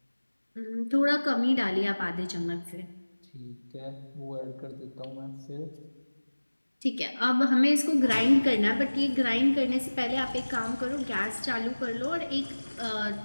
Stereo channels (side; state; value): both; inverted; correlation -1.00